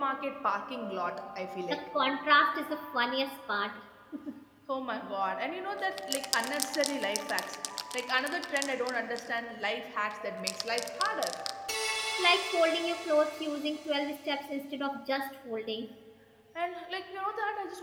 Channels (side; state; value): both; identical; correlation 1.00